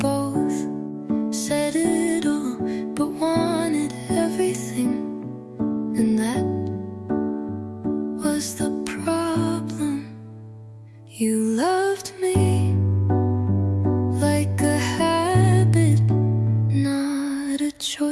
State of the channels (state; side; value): identical; both; correlation 1.00